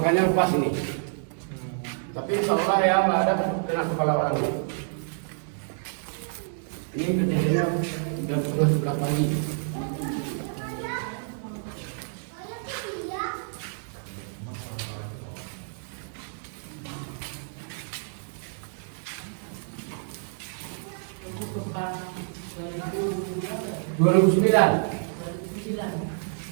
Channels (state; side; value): silent; left; digital silence